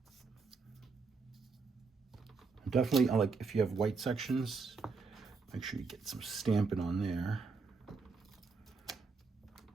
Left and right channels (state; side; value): quieter; left; 4.5 dB